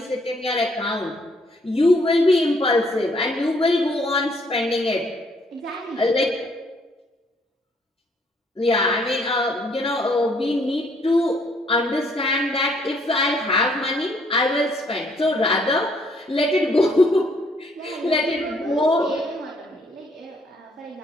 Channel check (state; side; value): normal; both; correlation 0.67